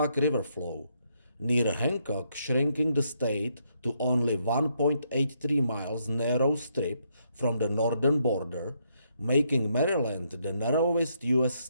River flow, near Hancock shrinking the state to only 1.83 miles narrow strip from the northern border, making Maryland the narrowest U.S.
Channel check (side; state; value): both; inverted; correlation -0.75